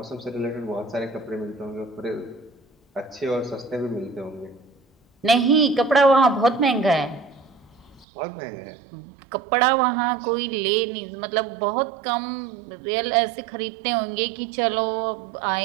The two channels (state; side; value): drops out; left; at 8.1 s